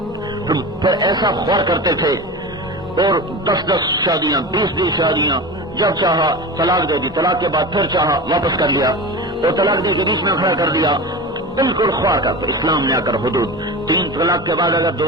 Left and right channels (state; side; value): normal; both; correlation 0.29